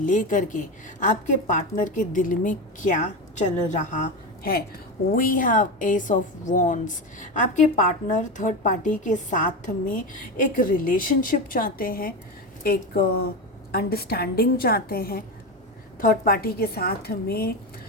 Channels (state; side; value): normal; both; correlation 0.19